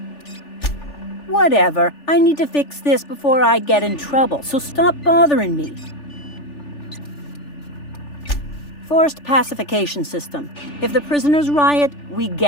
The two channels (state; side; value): late; right; 3.4 ms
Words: Whatever. I need to fix this before I get in trouble, so stop bothering me. Forced pacification system. If the prisoners riot, we